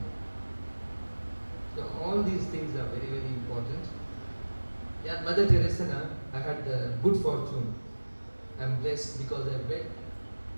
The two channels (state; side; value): inverted; both; correlation -1.00